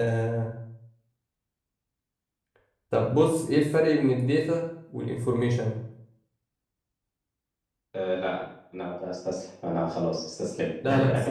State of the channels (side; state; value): both; identical; correlation 1.00